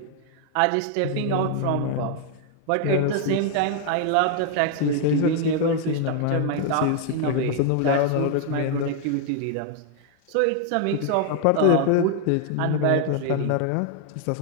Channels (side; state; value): both; different; correlation 0.00